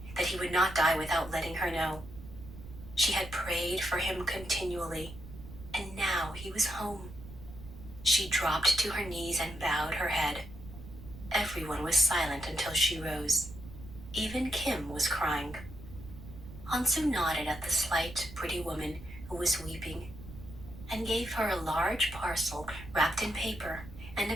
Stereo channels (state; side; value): noise; right; rumble, 14 dB below the sound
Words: that he would not die without letting her know. She had prayed for him continually, and now he was home. She dropped to her knees and bowed her head. Everyone was silent until she rose. Even Kim was crying. Hansu nodded at the slight, pretty woman who was weeping and gave her a large parcel wrapped in paper and